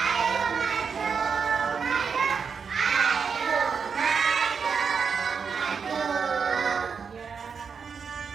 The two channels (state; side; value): quieter; left; 6.0 dB